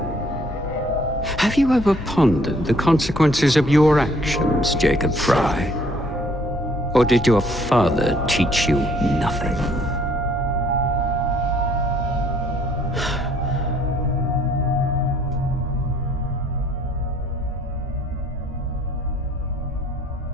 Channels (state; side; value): normal; both; correlation 0.61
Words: Have you ever pondered the consequences of your actions, Jacob Fry? Or did your father teach you nothing?